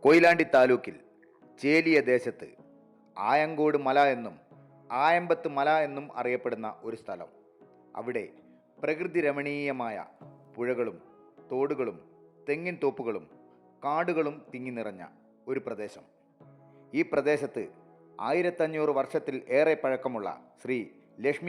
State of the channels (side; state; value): both; identical; correlation 1.00